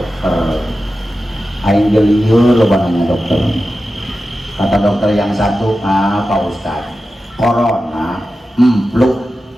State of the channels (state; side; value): normal; both; correlation 0.93